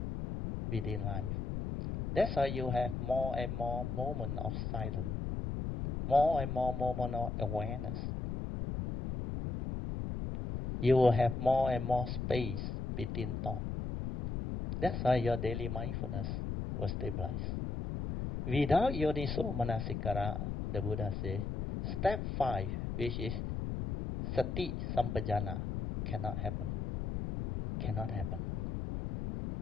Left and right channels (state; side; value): noise; left; rumble, 3 dB below the sound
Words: within life. That's why you have more and more moments of silence, more and more moments of awareness. You will have more and more space between thoughts. That's why your daily mindfulness will stabilize. Without yoniso manasikara, the Buddha says, step 5, which is sati sampajana, cannot happen. Cannot happen.